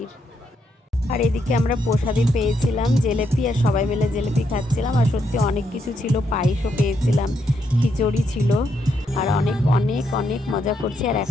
আর এদিকে আমরা প্রসাদই পেয়েছিলাম জিলেপি, আর সবাই মিলে জিলেপি খাচ্ছিলাম। আর সত্যি অনেক কিছু ছিল, পায়েসও পেয়েছিলাম, খিচুড়ি ছিল, আর অনেক অনেক অনেক মজা করছি। আর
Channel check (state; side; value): normal; both; correlation 0.78